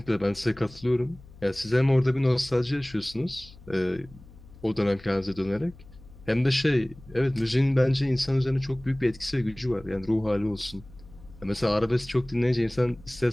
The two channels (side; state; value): left; noise; hum, 21 dB below the sound